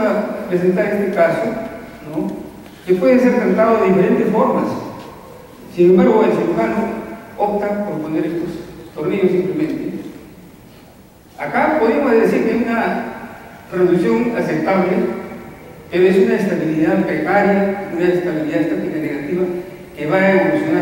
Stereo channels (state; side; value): identical; both; correlation 1.00